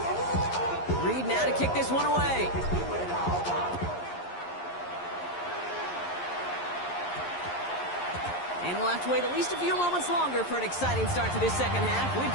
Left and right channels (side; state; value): right; late; 11 ms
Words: Reed now to kick this one away. And we'll have to wait at least a few moments longer for an exciting start to this second half. We've